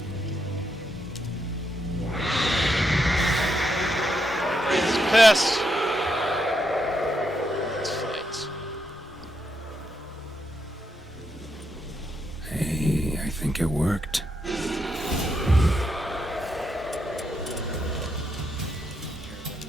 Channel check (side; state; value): both; normal; correlation 0.81